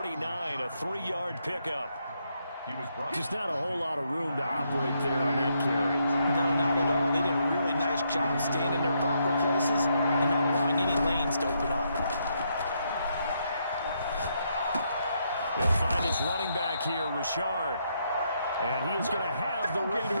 a 3-yard pickup. Just not a whole lot of room to operate there on that carry. No, not at all. They did a really nice job staying in their proper places and not allowing any lanes to open up. They'll find his running back here, Rashard. And he is going to have the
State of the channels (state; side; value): inverted; both; correlation -0.77